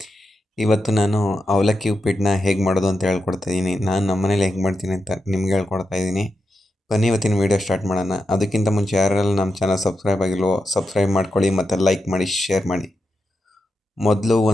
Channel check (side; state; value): both; normal; correlation 0.87